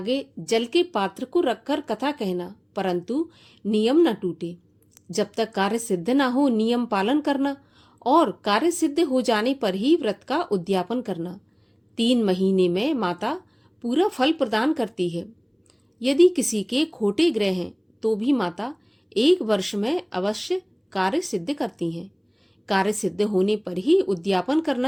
जल के पात्र को रखकर कथा कहना, परंतु नियम न टूटे। जब तक कार्य सिद्ध न हो नियम पालन करना और कार्य सिद्ध हो जाने पर ही व्रत का उद्यापन करना। 3 महीने में माता पूरा फल प्रदान करती है। यदि किसी के खोटे ग्रह हैं तो भी माता 1 वर्ष में अवश्य कार्य सिद्ध करती हैं। कार्य सिद्ध होने पर ही उद्यापन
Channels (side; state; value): both; identical; correlation 1.00